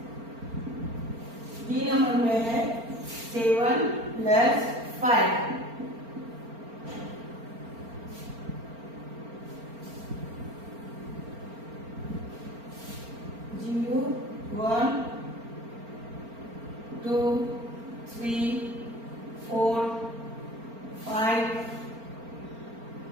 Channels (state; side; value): late; left; 4.4 ms